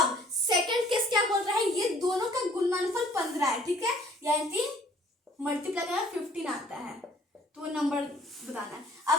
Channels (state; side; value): normal; both; correlation 0.57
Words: सेकंड केस क्या बोल रहा है, ये दोनों का गुणनफल 15 है, ठीक है, यानी मल्टीप्लाई करना 15 आता है, तो वो नंबर बताना है।